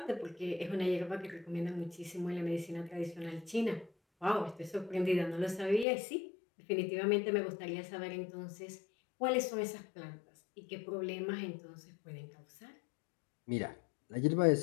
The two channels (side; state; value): right; drops out; at 5.9 s